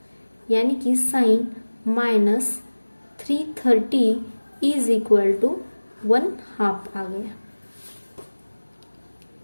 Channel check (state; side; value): inverted; both; correlation -1.00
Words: यानी कि sine minus 330 is equal to 1/2 आ गया।